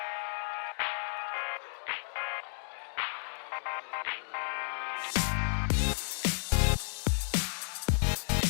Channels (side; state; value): right; silent; 56 dB below the other